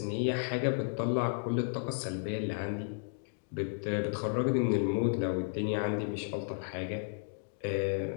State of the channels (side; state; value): right; silent; digital silence